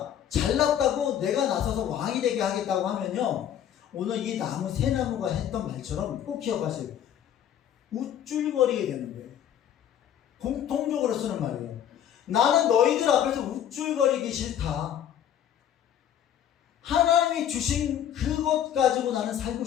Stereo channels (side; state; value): right; quieter; 10.1 dB